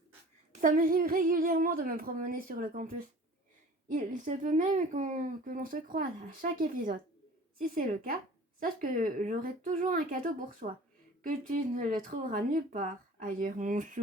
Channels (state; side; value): normal; both; correlation 0.44